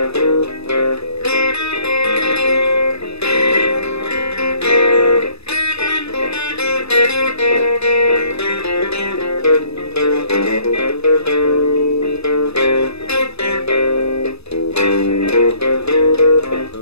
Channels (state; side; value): late; right; 0.79 ms